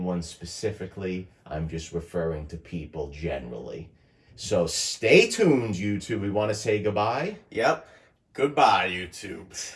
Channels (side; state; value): both; identical; correlation 1.00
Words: specifically. I'm just referring to people generally. So stay tuned, YouTube. We want to say goodbye. Yep. Goodbye, YouTube.